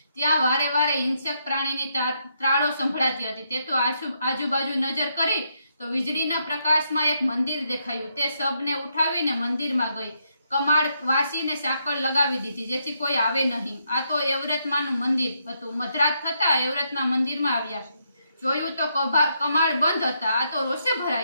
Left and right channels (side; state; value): both; inverted; correlation -0.78